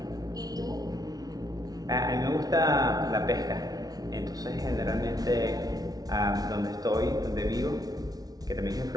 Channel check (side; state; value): left; late; 0.18 ms